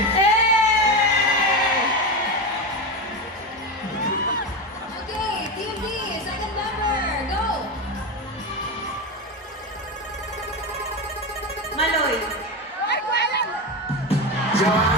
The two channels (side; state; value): both; normal; correlation 0.18